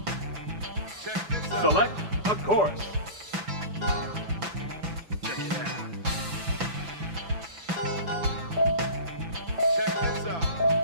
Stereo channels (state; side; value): late; left; 6.0 ms